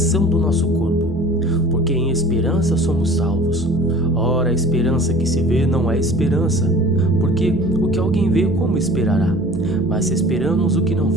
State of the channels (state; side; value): noise; right; hum, 19 dB below the sound